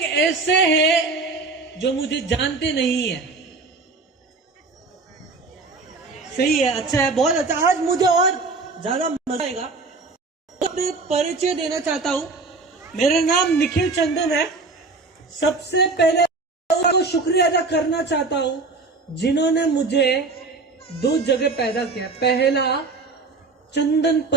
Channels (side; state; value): left; quieter; 3.8 dB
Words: ऐसे हैं जो मुझे जानते नहीं है? सही है, अच्छा है, बहुत अच्छा। आज मुझे और ज्यादा मजा आएगा। अपने परिचय देना चाहता हूँ। मेरा नाम निखिल चंदन है। सबसे पहले तो शुक्रिया अदा करना चाहता हूँ जिन्होंने मुझे दो जगह पैदा किया। पहला चंदन